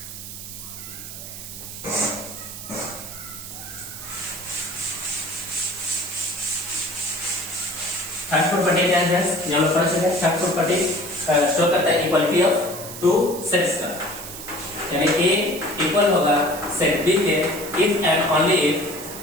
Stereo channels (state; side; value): noise; right; hiss, 11 dB below the sound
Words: थर्ड प्रॉपर्टी क्या है फ्रेंड्स, यहाँ पर पढ़ चुके हैं। थर्ड प्रॉपर्टी शो करता है इक्वालिटी ऑफ टू सेट्स का, यानी ए इक्वल होगा सेट बी के इफ एंड ओनली इफ